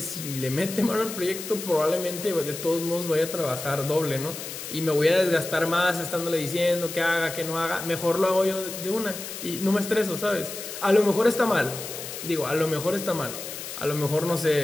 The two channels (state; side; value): noise; left; hiss, 9 dB below the sound